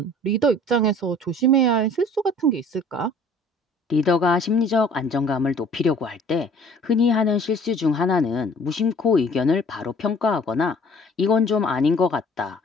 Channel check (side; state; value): both; normal; correlation 0.51